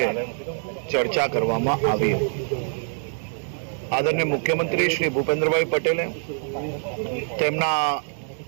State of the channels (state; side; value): silent; left; 62 dB below the other